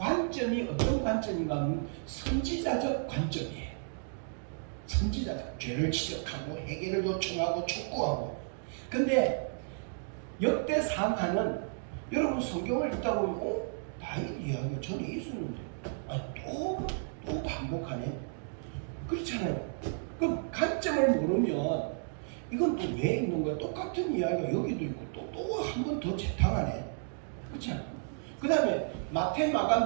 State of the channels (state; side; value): silent; left; digital silence